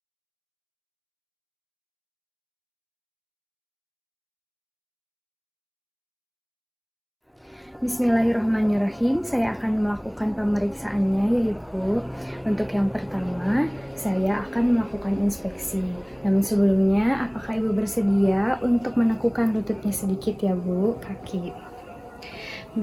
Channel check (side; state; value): both; identical; correlation 1.00